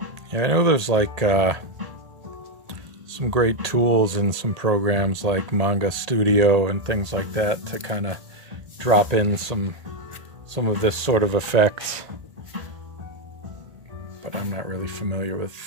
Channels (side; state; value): left; late; 1.8 ms